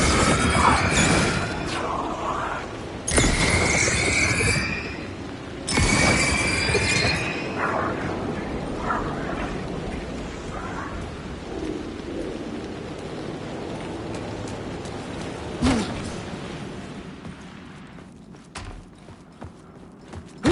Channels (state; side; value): identical; both; correlation 1.00